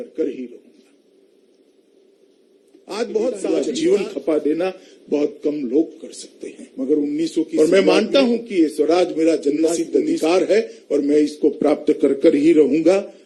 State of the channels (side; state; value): both; identical; correlation 1.00